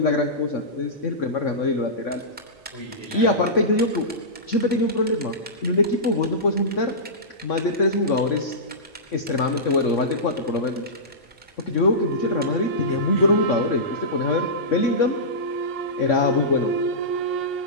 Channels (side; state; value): both; normal; correlation -0.18